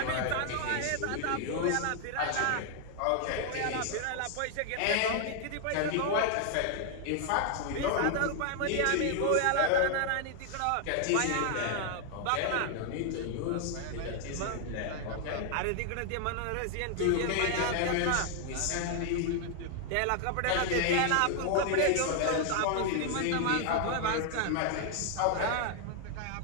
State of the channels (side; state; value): both; different; correlation 0.00